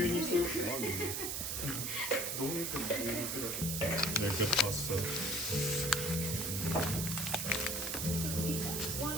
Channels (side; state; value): right; noise; hiss, 1 dB below the sound